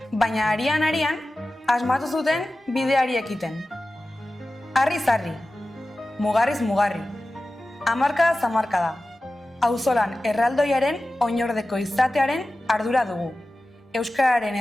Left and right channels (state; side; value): normal; both; correlation 0.95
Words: baina arian asmatu zuten bideari ekiten. Harriz harri, mugarriz mugarri, hamarkada zamarkada, auzolan erraldoiaren oinordeko izatearen ardura dugu. Euskararen